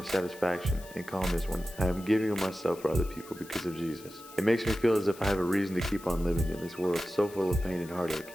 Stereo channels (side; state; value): left; noise; hiss, 19 dB below the sound